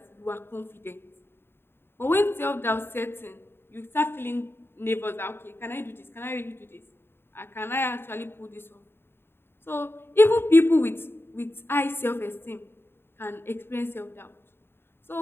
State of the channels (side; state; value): right; late; 0.11 ms